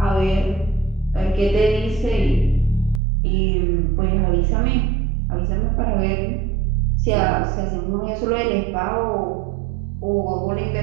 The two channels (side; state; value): left; drops out; at 3.0 s